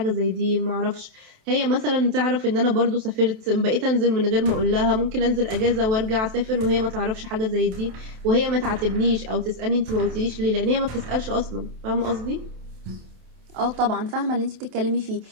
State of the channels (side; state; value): left; late; 27 ms